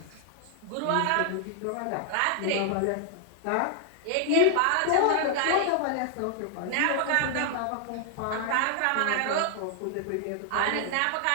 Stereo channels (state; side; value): different; both; correlation 0.00